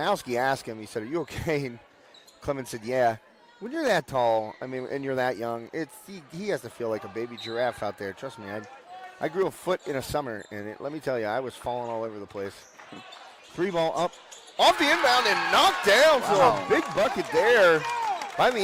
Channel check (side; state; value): both; identical; correlation 1.00